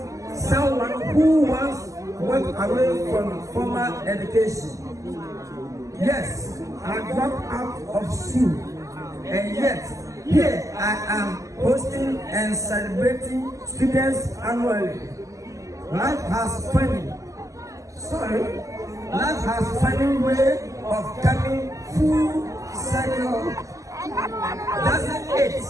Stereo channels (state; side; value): late; left; 0.16 ms